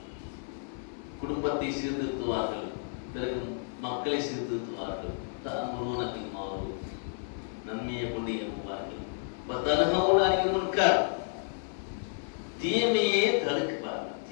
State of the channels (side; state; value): right; silent; 57 dB below the other